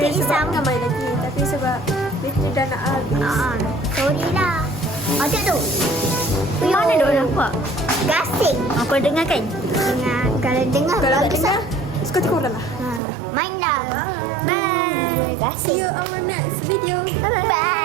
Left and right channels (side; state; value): left; drops out; at 13.0 s